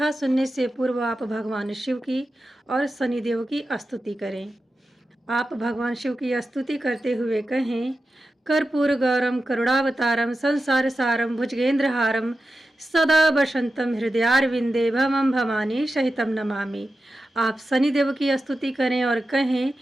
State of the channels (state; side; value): normal; both; correlation 0.92